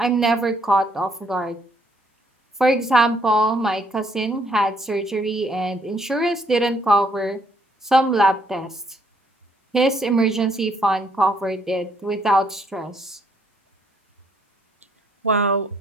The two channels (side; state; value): both; normal; correlation 0.68